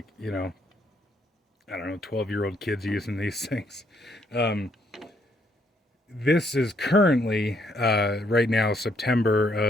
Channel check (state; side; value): normal; both; correlation 0.71